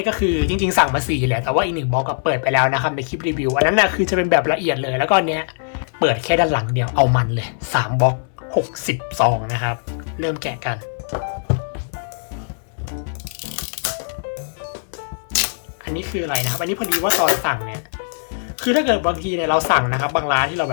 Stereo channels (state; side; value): silent; right; 65 dB below the other